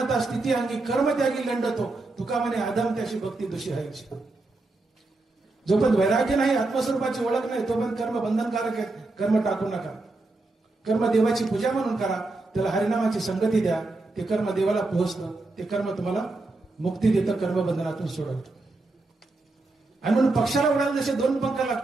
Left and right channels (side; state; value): left; quieter; 3.2 dB